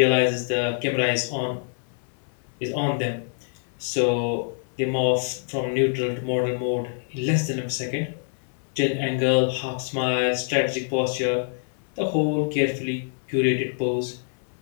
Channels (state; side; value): silent; right; 62 dB below the other